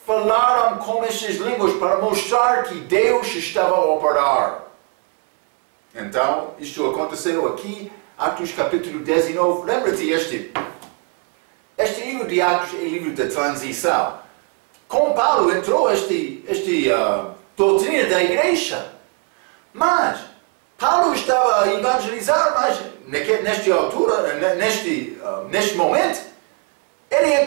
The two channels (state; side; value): quieter; left; 33.3 dB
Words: falaram com estas línguas para mostrar que Deus estava a operar. Então, isto aconteceu aqui, Atos capítulo 19. Lembra-te, este livro de Atos é livro da transição. Com Paulo entrou esta doutrina da igreja. Mas Paulo estava a evangelizar, mas nesta altura, neste momento, ele